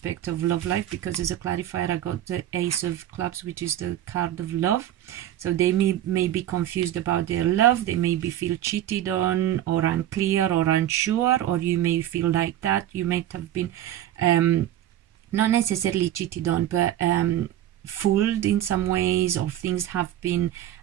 of love life, because as a clarifier I got the Ace of Clubs, which is the card of love. So they may be confused about their love. They may be feel cheated on, or unclear or unsure, or you may feel like that. You might have been not necessarily cheated on, but fooled in some ways, or things have been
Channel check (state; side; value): quieter; left; 12.4 dB